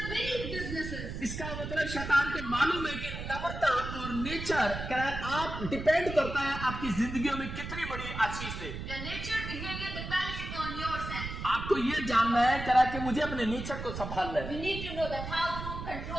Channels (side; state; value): right; noise; rumble, 7 dB below the sound